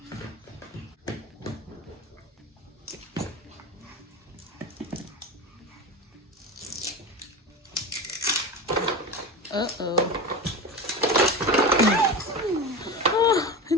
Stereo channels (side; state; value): both; normal; correlation 0.25